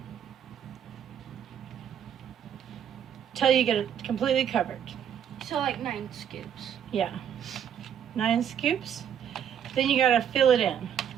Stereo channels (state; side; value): quieter; left; 9.0 dB